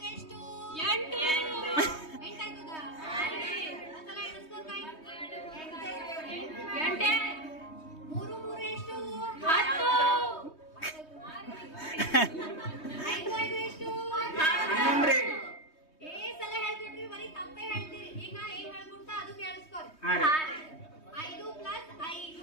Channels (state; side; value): late; right; 3.2 ms